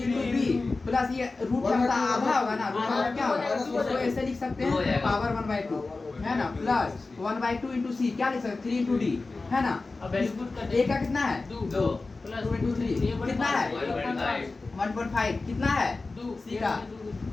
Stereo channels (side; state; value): right; quieter; 3.6 dB